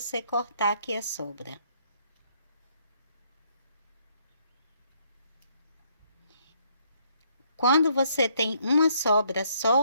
cortar aqui a sobra. Quando você tem uma sobra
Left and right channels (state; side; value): inverted; both; correlation -0.69